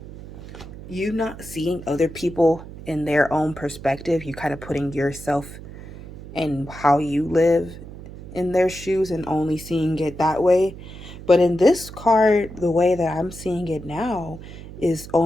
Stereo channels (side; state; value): right; noise; hum, 14 dB below the sound